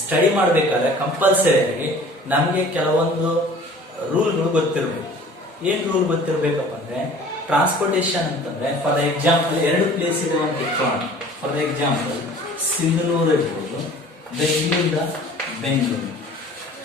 ಮಾಡ್ಬೇಕಾದ್ರೆ ಕಂಪಲ್ಸರಿ ನಮ್ಗೆ ಕೆಲವೊಂದು ರೂಲ್ಗಳು ಗೊತ್ತಿರ್ಬೇಕು. ಏನ್ ರೂಲ್ ಗೊತ್ತಿರ್ಬೇಕಪ್ಪ ಅಂದ್ರೆ, ಟ್ರಾನ್ಸ್ಪೋರ್ಟೇಷನ್ ಅಂತಂದ್ರೆ ಫಾರ್ ಎಕ್ಸಾಂಪಲ್ ಎರಡು ಪ್ಲೇಸ್ ಇದೆ ಅಂತ ಇಟ್ಕೊಳ್ಳೋಣ. ಫಾರ್ ಎಕ್ಸಾಂಪಲ್ ಸಿಂಧನೂರು ಇರ್ಬೋದು, ಬೆಂಗಳೂರಿಂದ ಬೆಂಗಳೂರು.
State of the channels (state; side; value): normal; both; correlation 0.47